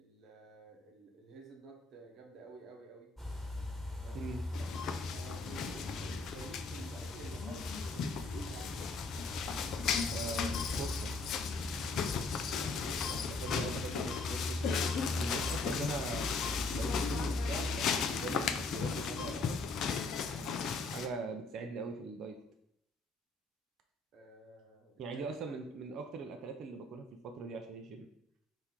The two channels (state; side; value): quieter; right; 3.4 dB